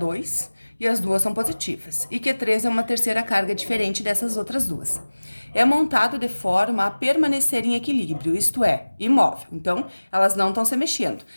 e as duas são positivas, e Q3 é uma terceira carga diferente dessas outras duas. É montado de forma a permanecer em equilíbrio, isto é, imóvel. Então, elas não estão se mexendo.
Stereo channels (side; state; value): both; inverted; correlation -1.00